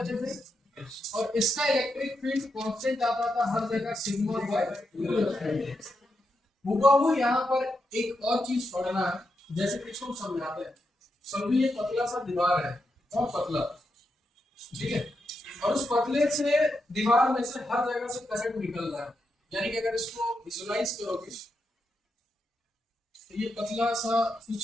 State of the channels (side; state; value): both; normal; correlation 0.84